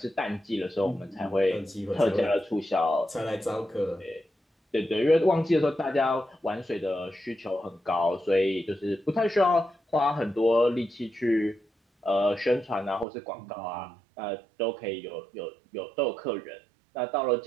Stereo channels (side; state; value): left; drops out; at 13.1 s